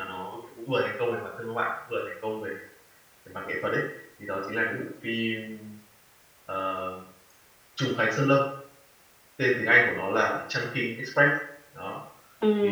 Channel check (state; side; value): identical; both; correlation 1.00